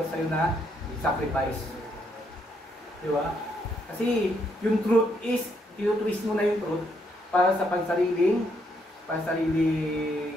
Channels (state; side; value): normal; both; correlation 0.74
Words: sa'yo na sacrifice. Diba? Kasi yung truth is, tinutwist mo na yung truth para sa pansariling